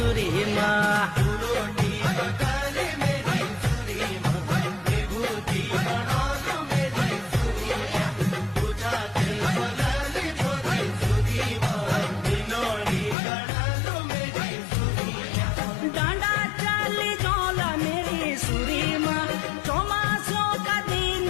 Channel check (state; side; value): drops out; right; at 13.2 s